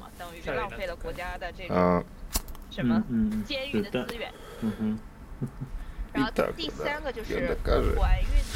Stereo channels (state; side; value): identical; both; correlation 1.00